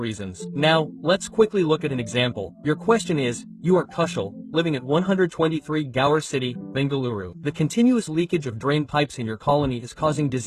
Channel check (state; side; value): identical; both; correlation 1.00